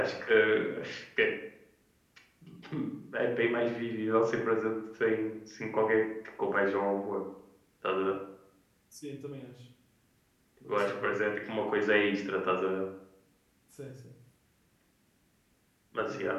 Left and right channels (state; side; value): identical; both; correlation 1.00